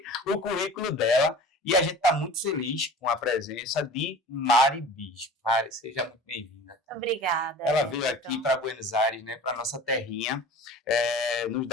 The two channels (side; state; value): both; normal; correlation 0.40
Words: o currículo dela e a gente está muito feliz com a presença de Mari Bispo. Mari, seja muito bem-vinda. Obrigada. Ela veio aqui para Buenos Aires, né, para nossa terrinha, nos